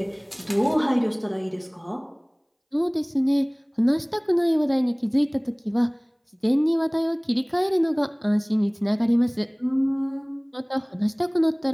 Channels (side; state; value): both; identical; correlation 1.00